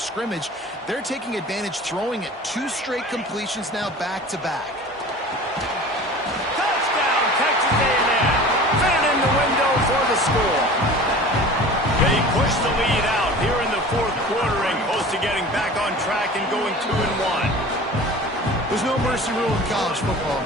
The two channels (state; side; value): normal; both; correlation 0.40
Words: scrimmage, they're taking advantage, throwing it 2 straight completions now back-to-back. Touchdown, Texas A&M. Fit in the window for the score. They push the lead out here in the 4th quarter and close to getting back on track and going 2-1. There's no mercy rule in college football,